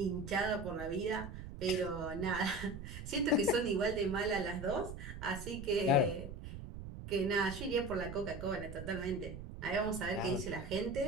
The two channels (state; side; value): noise; right; rumble, 10 dB below the sound